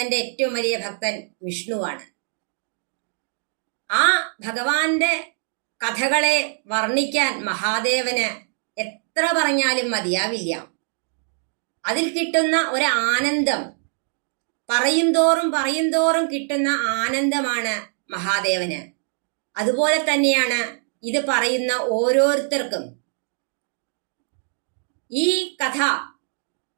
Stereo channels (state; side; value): silent; left; 63 dB below the other